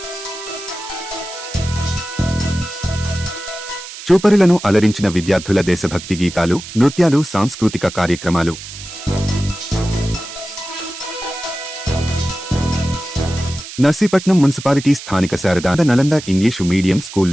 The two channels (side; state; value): right; noise; hiss, 13 dB below the sound